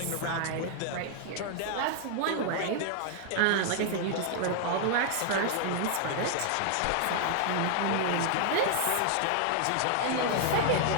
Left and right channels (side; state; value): both; different; correlation 0.00